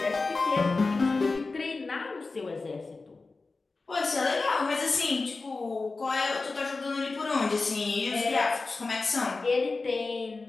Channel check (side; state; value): right; quieter; 3.8 dB